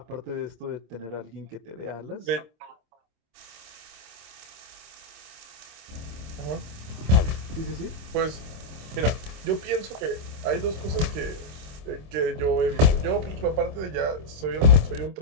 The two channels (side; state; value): left; late; 26 ms